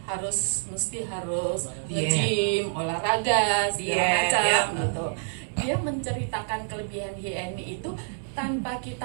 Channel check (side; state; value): left; silent; digital silence